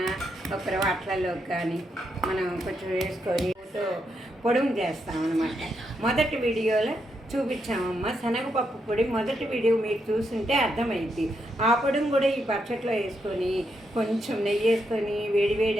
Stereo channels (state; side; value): normal; both; correlation 0.81